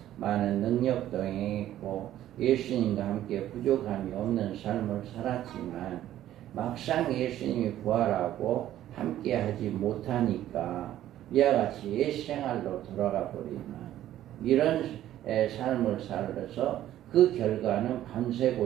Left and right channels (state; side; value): quieter; left; 12.8 dB